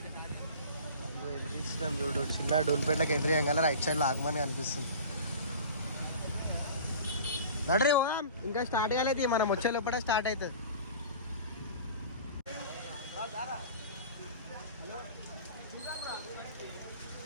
ఎదురిస్తున్నాం చూడు. చిన్న డూల్పేటలకు ఎదురేయంగా రైట్ సైడ్లో ఆగమని అనిపిస్తుంది. నడరే ఇంకా స్టార్ట్ కాలేదు. మనం వచ్చే లోపల స్టార్ట్ అవుతుంది.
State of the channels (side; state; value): both; inverted; correlation -0.40